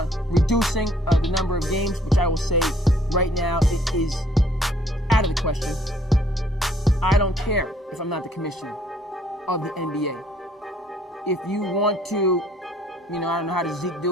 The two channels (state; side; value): normal; both; correlation 0.61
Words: reducing the number of games, which I will say right now it is out of the question. I don't care if I'm not the commissioner of the NBA. If you want to, You know, I don't know how does Zeke